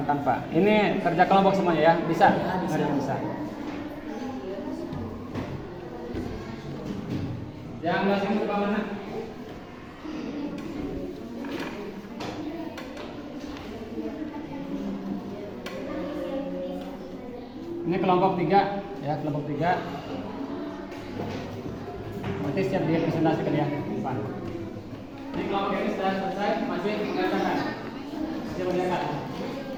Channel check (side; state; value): both; identical; correlation 1.00